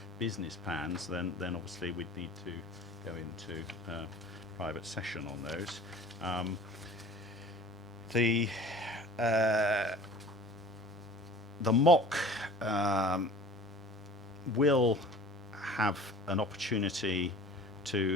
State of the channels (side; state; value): both; normal; correlation 0.44